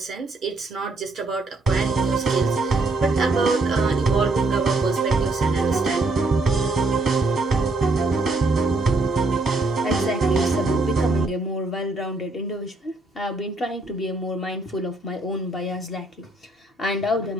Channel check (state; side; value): quieter; left; 3.0 dB